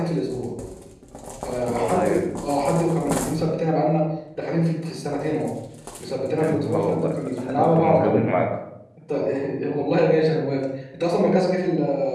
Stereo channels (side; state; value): both; identical; correlation 1.00